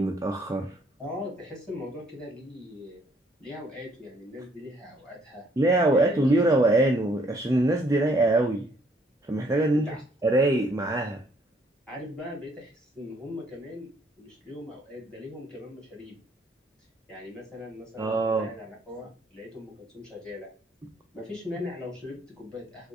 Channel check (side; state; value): both; normal; correlation 0.65